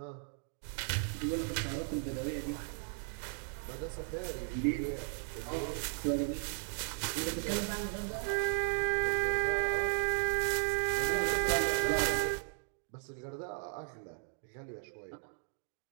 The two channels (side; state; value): left; silent; 54 dB below the other